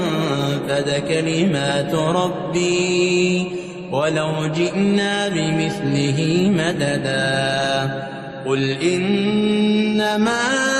كلمات ربي ولو جئنا بمثله مددا قل إنما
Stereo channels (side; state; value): both; identical; correlation 1.00